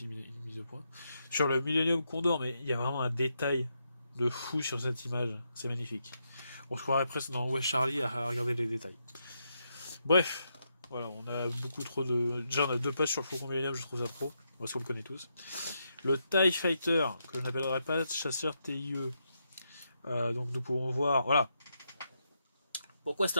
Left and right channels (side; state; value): both; inverted; correlation -0.81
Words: une mise au point sur le Millennium Condor, mais il y a vraiment un détail de fou sur cette image, c'est magnifique. On se croirait presque dans West Charlie à regarder les détails. Bref, voilà, on a beaucoup trop de. Déjà, on a 2 pages sur le Faucon Millennium, je trouve ça trop, parce qu'on le connaît tous. Le TIE Fighter, que je n'appellerai pas chasseur TIE. Donc nous pouvons voir, voilà. Pourquoi